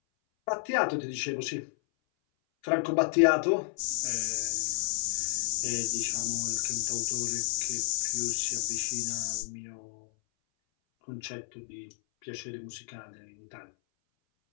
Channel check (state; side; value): silent; right; 57 dB below the other